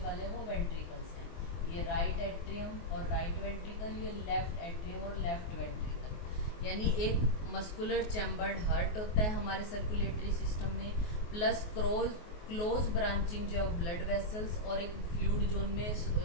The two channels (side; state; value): right; late; 24 ms